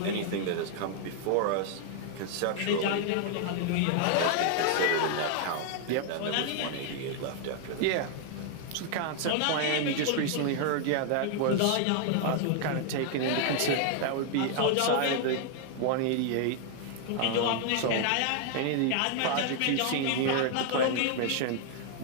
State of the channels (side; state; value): both; different; correlation 0.00